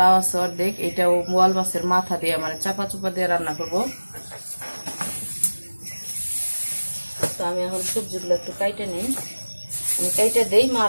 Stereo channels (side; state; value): both; inverted; correlation -1.00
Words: আছে অর্ধেক, এটাও বোয়াল মাছের মাথা দিয়ে মানে চাপা চুপা দিয়ে রান্না করব। তো আমি এখন সবজিগুলো একটু কাইটে নিই, আমি কাইটে দেই, মা